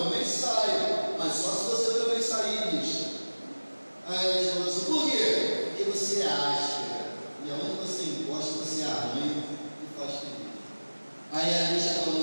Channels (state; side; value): inverted; both; correlation -1.00